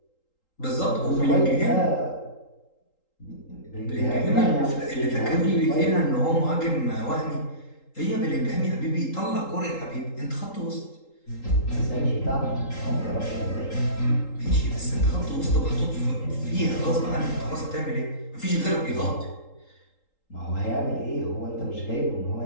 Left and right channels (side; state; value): right; late; 3.8 ms